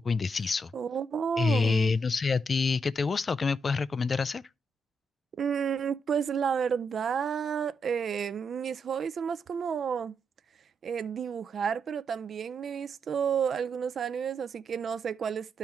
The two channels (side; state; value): both; normal; correlation 0.80